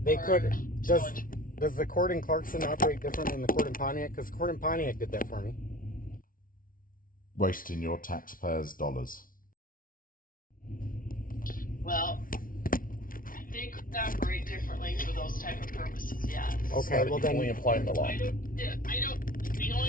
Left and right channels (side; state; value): right; late; 0.40 ms